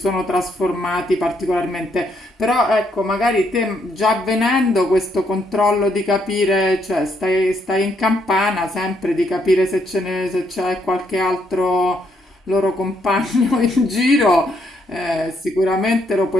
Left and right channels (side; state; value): both; normal; correlation 0.74